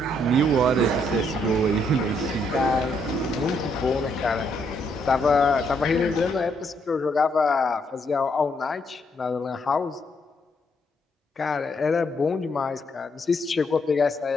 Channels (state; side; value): normal; both; correlation 0.73